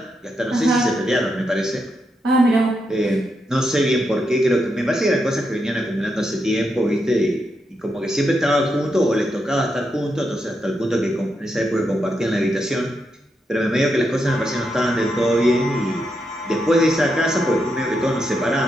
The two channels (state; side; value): normal; both; correlation 0.83